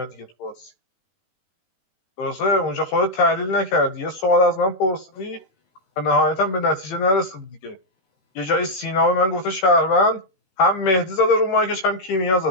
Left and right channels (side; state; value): right; late; 15 ms